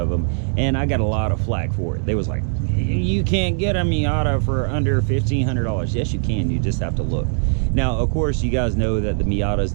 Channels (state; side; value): silent; left; 62 dB below the other